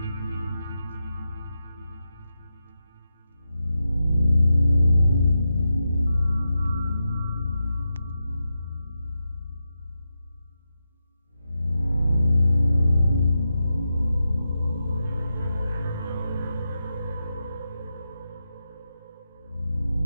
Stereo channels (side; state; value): both; inverted; correlation -0.88